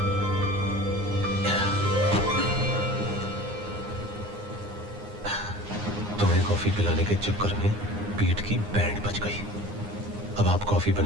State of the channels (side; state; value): left; late; 9.7 ms